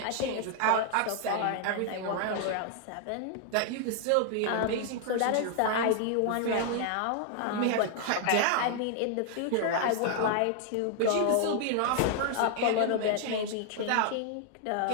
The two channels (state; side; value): different; both; correlation 0.00